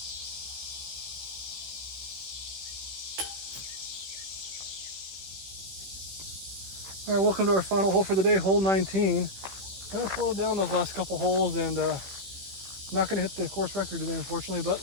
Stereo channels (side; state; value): left; late; 16 ms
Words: All right, welcome to our final hole for the day, hole 19. Kind of slowed down those last couple holes, and not going to hit the course record today, unfortunately, but